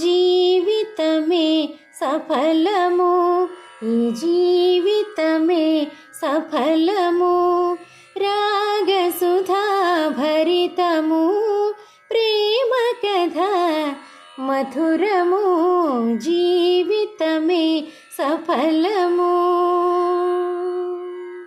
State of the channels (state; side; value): identical; both; correlation 1.00